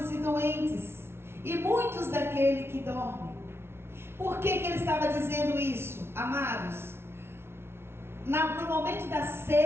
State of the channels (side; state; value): left; late; 0.12 ms